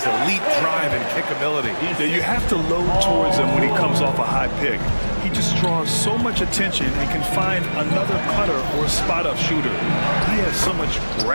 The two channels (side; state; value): both; inverted; correlation -1.00